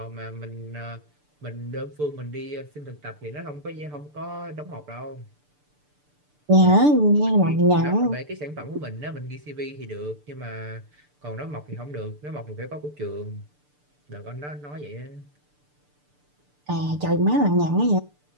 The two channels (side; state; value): left; late; 6.8 ms